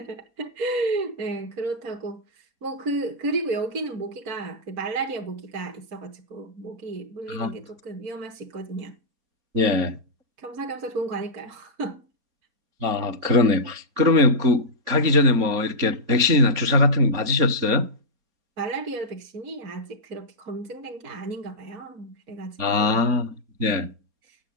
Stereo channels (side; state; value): left; late; 4.2 ms